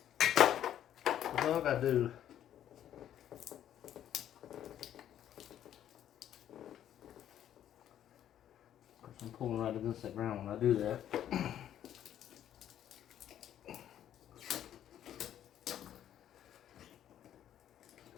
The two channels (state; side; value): quieter; right; 10.9 dB